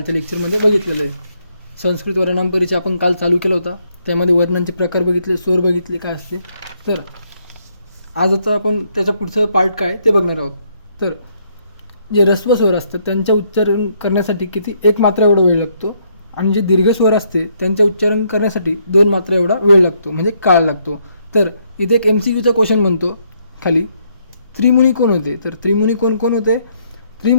लेक्चरमध्ये बघितलेलं आहे. संस्कृत वर्णनाम परिचय आपण काल चालू केला होता, त्यामध्ये वर्णांचे प्रकार बघितले, स्वर बघितले काय असते. तर आजचा आपण त्याचा पुढचं पार्ट काय ते बघणार आहोत. तर जे ऱ्हस्व स्वर असतात त्यांचे उच्चारण करण्यासाठी किती 1 मात्रा एवढा वेळ लागतो, आणि जे दीर्घ स्वर असते त्यांचे उच्चारण करण्यासाठी 2 मात्रा एवढा वेळ लागतो, म्हणजे काळ लागतो. तर इथे एक MCQचा क्वेश्चन बनतो खाली, त्रिमुनी कोण होते. तर त्रिमुनी कोण कोण होते.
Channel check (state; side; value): inverted; both; correlation -0.72